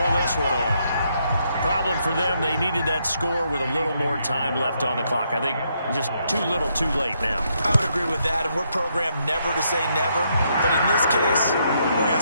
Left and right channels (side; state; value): both; inverted; correlation -0.76